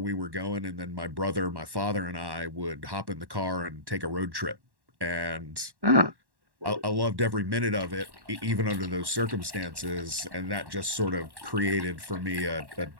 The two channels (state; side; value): late; left; 1.1 ms